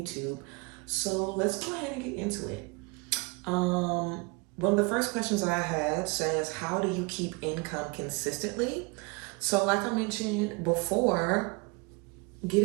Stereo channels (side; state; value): left; quieter; 28.4 dB